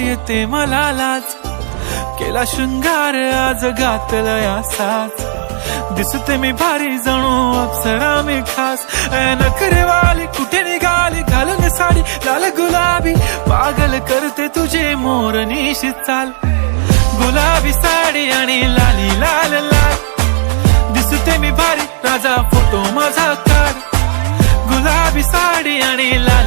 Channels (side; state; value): left; silent; 69 dB below the other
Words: मला लाज. केला शृंगार आज घातला साज, दिसते मी भारी जणू अप्सरा मी खास. नखरेवाली कुठे निघाली घालून साडी लाल गुलाबी, पागल करते तुझे मोरनीशी चाल. गुलाबी साडी आणि लाली लाल लाल, दिसते मी भारी राजा फोटो माझा काढ. गुलाबी साडी आणि